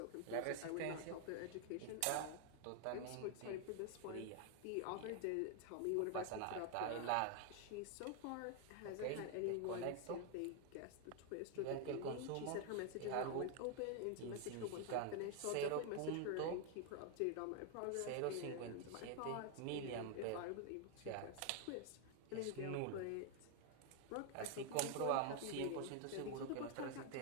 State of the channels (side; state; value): both; different; correlation 0.01